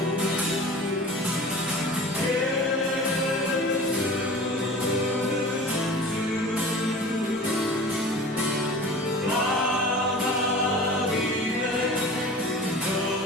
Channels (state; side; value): normal; both; correlation 0.39